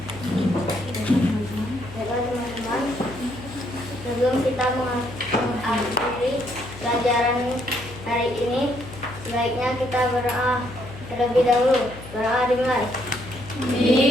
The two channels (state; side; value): noise; left; hum, 15 dB below the sound